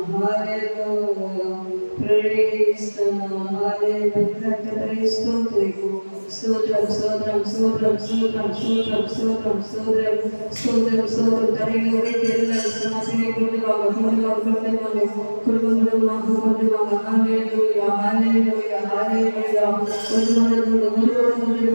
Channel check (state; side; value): inverted; both; correlation -1.00